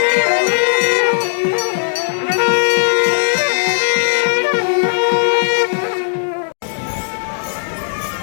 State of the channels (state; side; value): silent; right; digital silence